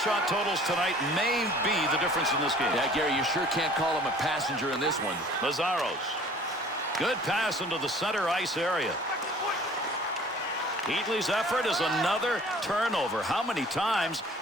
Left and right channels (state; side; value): normal; both; correlation 0.50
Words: totals tonight may be the difference in this game. Yeah, Gary, you sure can't call him a passenger in this one. Lazzaros. Good pass into the center ice area. Heatley's effort is another turnover. How many times?